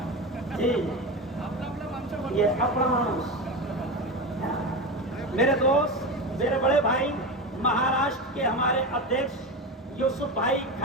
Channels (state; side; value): normal; both; correlation 0.21